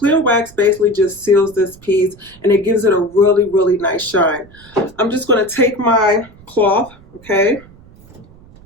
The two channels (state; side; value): noise; right; rumble, 24 dB below the sound